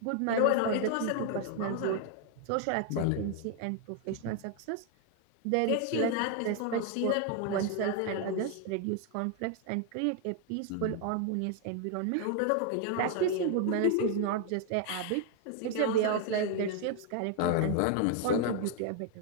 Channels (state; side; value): different; both; correlation 0.00